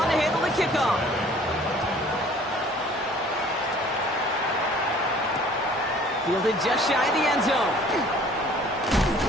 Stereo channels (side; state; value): both; normal; correlation 0.53